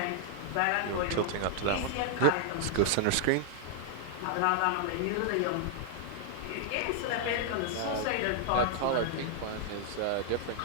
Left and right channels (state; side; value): different; both; correlation 0.00